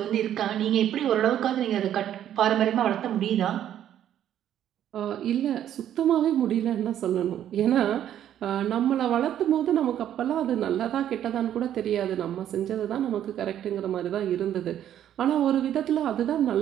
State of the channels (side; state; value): left; quieter; 10.8 dB